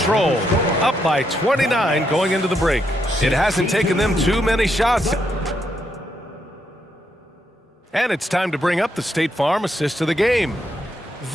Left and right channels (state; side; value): normal; both; correlation 0.79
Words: up by 29 going into the break. It hasn't taken them too many shots. And it's time to bring up the State Farm assist of the game.